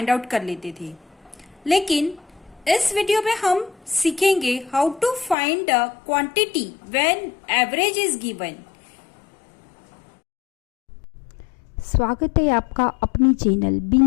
आउट कर लेते थे। लेकिन इस वीडियो में हम सीखेंगे how to find a quantity when average is given. स्वागत है आपका अपनी चैनल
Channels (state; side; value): drops out; right; at 5.4 s